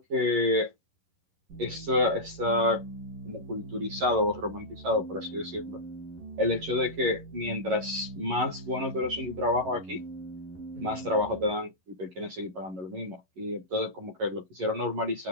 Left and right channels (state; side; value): late; left; 11 ms